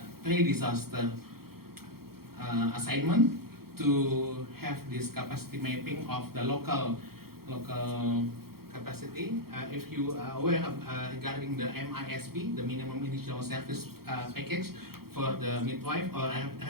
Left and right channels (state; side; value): late; left; 0.94 ms